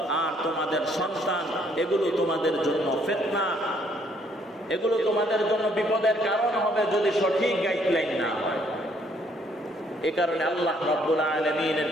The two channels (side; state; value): both; normal; correlation 0.66